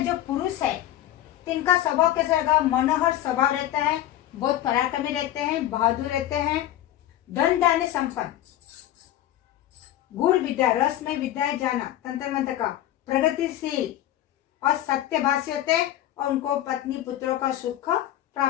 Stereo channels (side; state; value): right; quieter; 13.2 dB